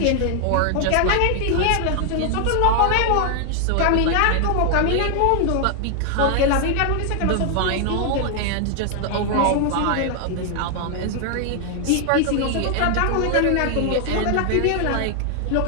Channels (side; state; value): both; different; correlation 0.00